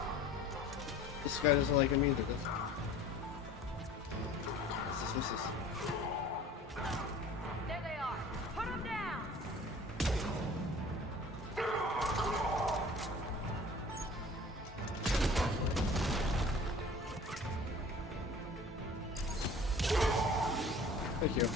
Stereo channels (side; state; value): both; normal; correlation 0.46